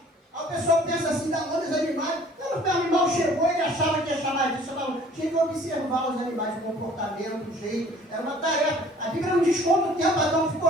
Aí o pessoal pensa assim, dar nome aos animais. Quando o animal chegou, ele achava que ia chamar disso. Tinha que observar os animais, o comportamento, o jeito. Era uma tarefa. A Bíblia não diz quanto tempo Adão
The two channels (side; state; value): both; normal; correlation 0.53